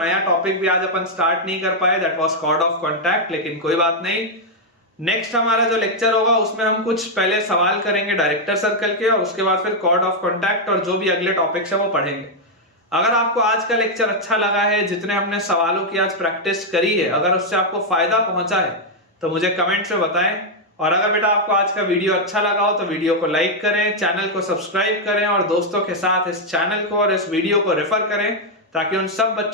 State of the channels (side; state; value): both; normal; correlation -0.01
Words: टॉपिक भी आज अपन स्टार्ट नहीं कर पाए, that was chord of contact. लेकिन कोई बात नहीं, नेक्स्ट हमारा जो लेक्चर होगा उसमें हम कुछ पहले सवाल करेंगे डायरेक्टर सर्कल के और उसके बाद फिर कॉर्ड ऑफ कॉन्टैक्ट और जो भी अगले टॉपिक्स है वो पढ़ेंगे। अगर आपको आज का लेक्चर अच्छा लगा है, जितने हमने सवालों की आज प्रैक्टिस करी है, अगर उससे आपको फायदा पहुंचा है तो मुझे कमेंट से बताएं। और अगर बेटा आपको आज का वीडियो अच्छा लगा हो तो वीडियो को लाइक करें, चैनल को सब्सक्राइब करें और दोस्तों के साथ इस चैनल को और इस वीडियो को रेफर करें ताकि उन सब